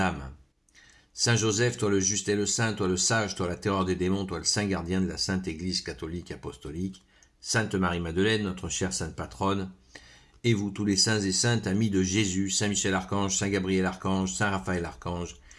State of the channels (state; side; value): identical; both; correlation 1.00